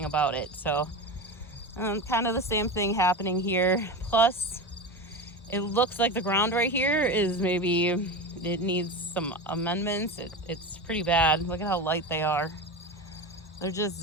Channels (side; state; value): both; normal; correlation 0.23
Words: about it. So kind of the same thing happening here. Plus, it looks like the ground right here it needs some amendments. It's pretty bad. Look at how light they are. They're